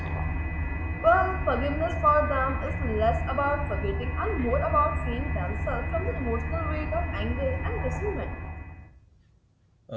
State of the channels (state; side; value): identical; both; correlation 1.00